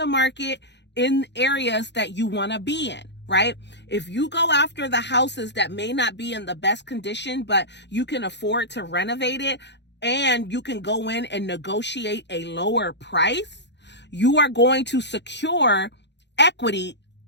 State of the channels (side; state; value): right; late; 0.51 ms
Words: market in areas that you want to be in, right? If you go after the houses that may not be in the best condition, but you can afford to renovate it and you can go in and negotiate a lower price, you are going to secure equity